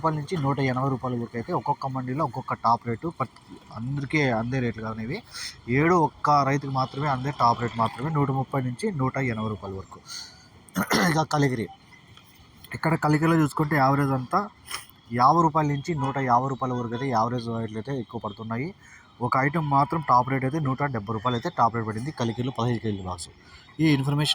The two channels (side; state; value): both; identical; correlation 1.00